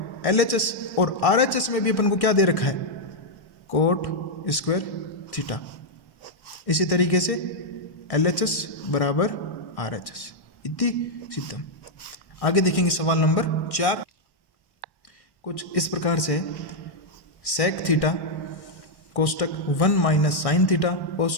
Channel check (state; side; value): late; right; 1.1 ms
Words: LHS, और RHS में भी अपन को क्या दे रखा है, कोट स्क्वायर थीटा। इसी तरीके से LHS बराबर RHS इति सिद्धम। आगे देखेंगे सवाल नंबर 4। कुछ इस प्रकार से सेक थीटा कोष्टक 1 माइनस साइन थीटा